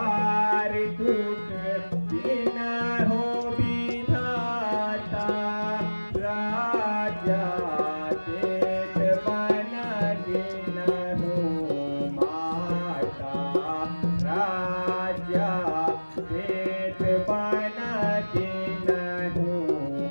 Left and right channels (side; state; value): both; inverted; correlation -1.00